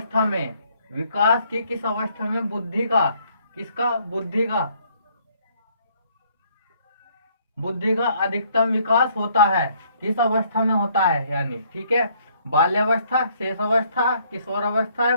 में विकास की किस अवस्था में बुद्धि का अधिकतम विकास होता है? किस अवस्था में होता है यानी, ठीक है। बाल्यावस्था, शेष अवस्था, किशोर अवस्था या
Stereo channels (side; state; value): both; inverted; correlation -0.66